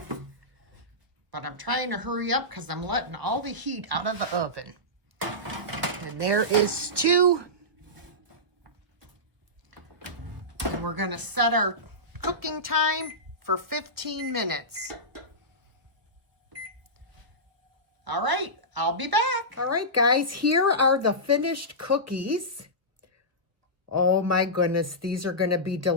but I'm trying to hurry up because I'm letting all the heat out of the oven. And there is two. And we're going to set our cooking time for 15 minutes. All right, I'll be back. All right, guys, here are the finished cookies. Oh my goodness, these are going to be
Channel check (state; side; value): late; left; 1.2 ms